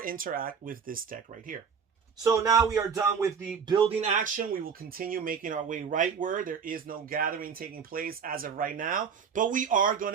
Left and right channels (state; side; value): quieter; left; 6.5 dB